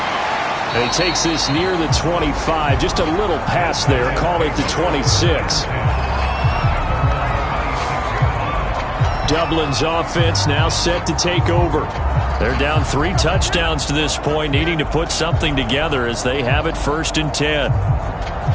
And he takes this near the 25. Just a little pass there. Call it the 26. Dublin's offense now set to take over. They're down 3 touchdowns to this point, needing to put something together as they have it 1st and 10.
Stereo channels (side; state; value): both; identical; correlation 1.00